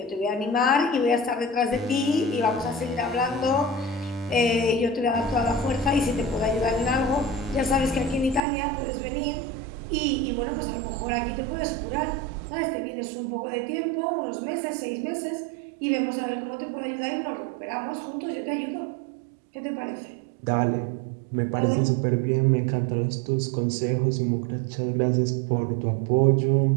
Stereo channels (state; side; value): drops out; left; at 8.4 s